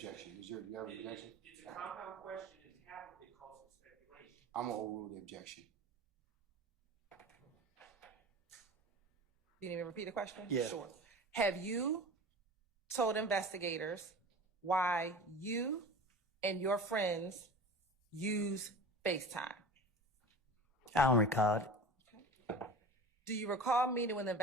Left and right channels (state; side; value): normal; both; correlation 0.36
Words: You have an objection? It's a compound question, and half of it calls for speculation. I'm gonna overrule the objection. You need me to repeat the question? Yeah. Sure. Have you told investigators why you and your friends use FaceTime? I don't recall it. Do you recall meeting with